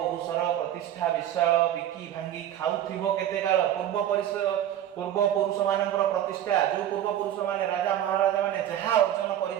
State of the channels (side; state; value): left; quieter; 11.3 dB